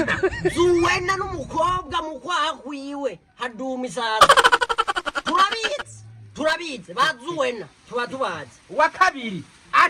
zuwena n'umukobwa mukwahwiwe haduma isaza turabizi bazuwena tuba tubazi wa kabiri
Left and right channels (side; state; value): both; identical; correlation 1.00